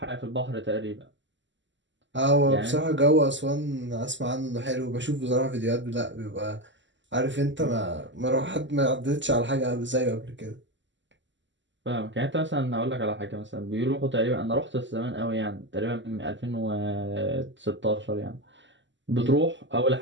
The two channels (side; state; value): left; late; 0.54 ms